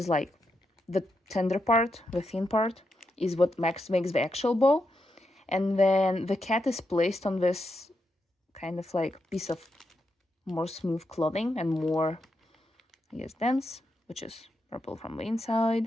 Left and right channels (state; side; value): normal; both; correlation 0.84